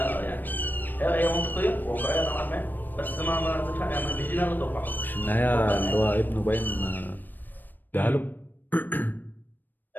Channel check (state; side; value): late; right; 0.090 ms